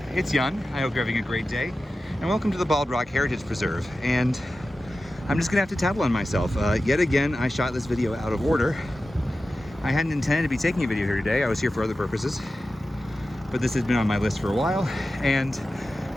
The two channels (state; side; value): normal; both; correlation 0.94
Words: it's Yun. I hope you're having a great day, and welcome to the Bald Rock Heritage Preserve. And I'm just gonna have to tattle on myself. Yet again, I shot this video out of order. I hadn't intended to be taking a video here today. I was here for other purposes, but this has been on my list for a while, and